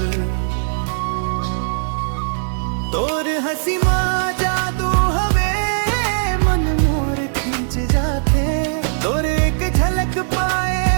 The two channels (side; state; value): left; silent; digital silence